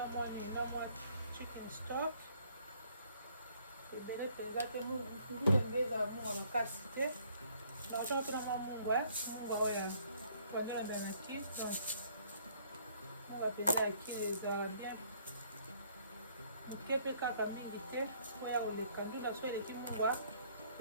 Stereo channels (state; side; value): inverted; both; correlation -0.62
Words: mwa chicken stock ebele mpenza te ndenge ezala mungwa makasi te natiango mpe na mwa mungwa oyo pendant la banaki donc on va péter à qui les a bien ok pe kaka mingi te oya koleka ndunda so eleki mungwa